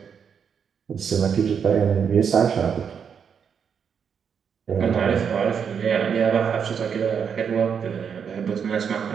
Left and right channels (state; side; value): quieter; left; 7.1 dB